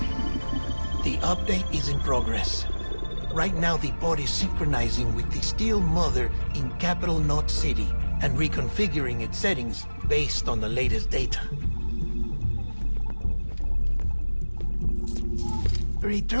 The update is in progress. Right now, the pod is synchronizing with the still mother in capital Knot City and reconfiguring its settings based on the latest data.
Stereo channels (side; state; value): both; inverted; correlation -1.00